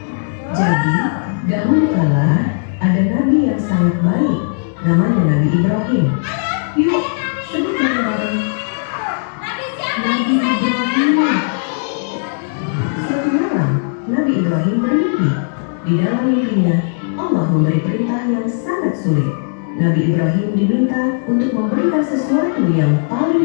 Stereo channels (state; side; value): silent; right; digital silence